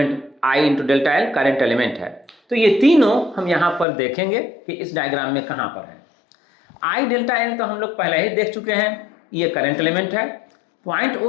I into delta L current element है। तो ये तीनों हम यहाँ पर देखेंगे कि इस डायग्राम में कहाँ पर है। I डेल्टा एल तो हम लोग पहले ही देख चुके हैं, ये करंट एलिमेंट है। पॉइंट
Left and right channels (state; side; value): drops out; right; at 3.9 s